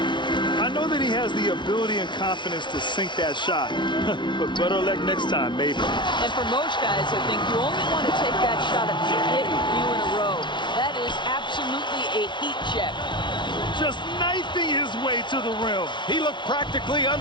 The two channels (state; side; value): late; right; 0.23 ms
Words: I know that he has the ability and confidence to sink that shot. But better luck next time, maybe. And for most guys, I think you only want to take that shot if you hit a few in a row. That is absolutely a heat check. Just knifing his way to the rim. He looked practically